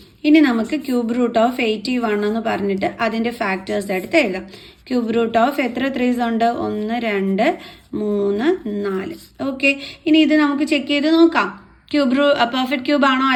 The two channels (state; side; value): identical; both; correlation 1.00